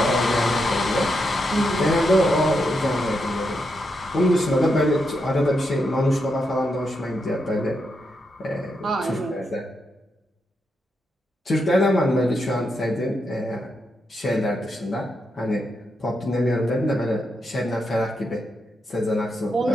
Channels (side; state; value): both; normal; correlation 0.83